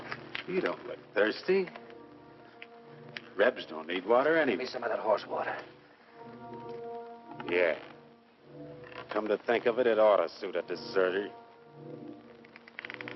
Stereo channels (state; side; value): identical; both; correlation 1.00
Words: You don't look thirsty. Rebs don't need water anyway. Give me some of that horse water. Yeah. Come to think of it, it ought to suit a deserter.